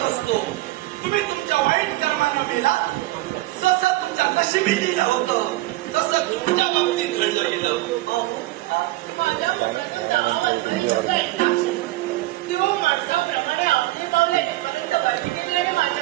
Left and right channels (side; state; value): left; quieter; 18.3 dB